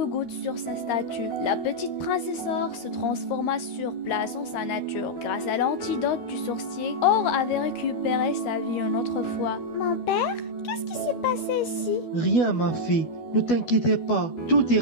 gouttes sur sa statue. La petite princesse Or se transforma sur place en sa nature. Grâce à l'antidote du sorcier, Or avait récupéré sa vie une autre fois. Mon père, qu'est-ce qui s'est passé ici? Rien, ma fille. Ne t'inquiétez pas. Tout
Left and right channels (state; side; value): late; right; 13 ms